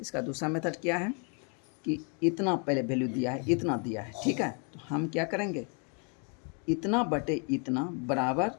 मेथड क्या है कि इतना पहले वैल्यू दिया है, इतना दिया है, ठीक है। तो हम क्या करेंगे, इतना बटे इतना बराबर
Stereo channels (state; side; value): quieter; right; 37.7 dB